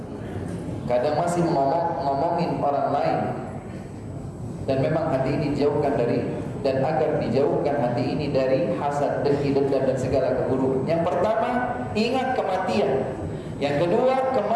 Kadang masih ngomongin orang lain, dan memang hati ini dijauhkan dari, dan agar dijauhkan hati ini dari hasad, dengki, dendam dan segala keburukan. Yang pertama, ingat kematian. Yang kedua,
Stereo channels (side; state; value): both; identical; correlation 1.00